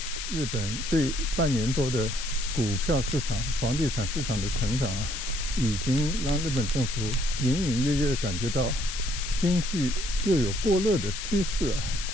日本这半年多的股票市场、房地产市场的成长啊，已经让日本政府隐隐约约的感觉到经济又有过热的趋势啊。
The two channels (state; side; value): noise; left; hiss, 7 dB below the sound